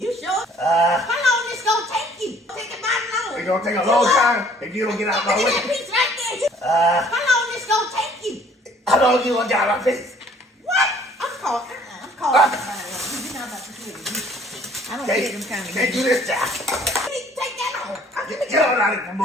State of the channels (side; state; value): both; normal; correlation 0.57